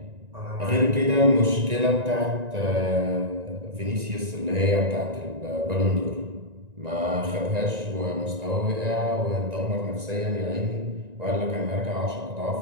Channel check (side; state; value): left; late; 1.9 ms